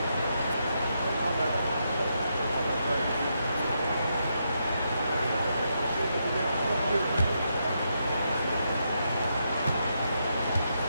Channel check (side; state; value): both; inverted; correlation -0.81